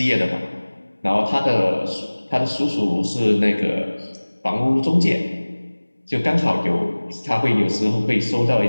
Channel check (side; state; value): both; inverted; correlation -1.00